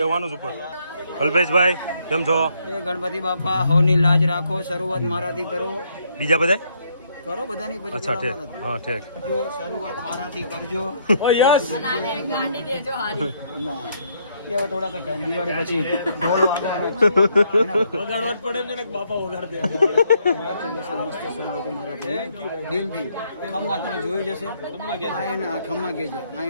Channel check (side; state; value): both; inverted; correlation -0.71